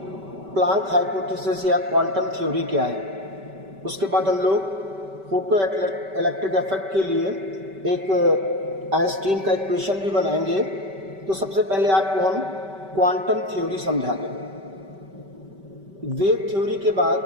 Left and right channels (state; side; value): late; left; 5.2 ms